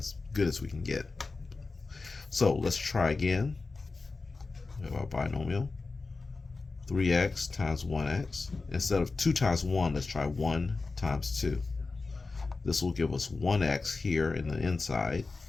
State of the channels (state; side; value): quieter; right; 3.9 dB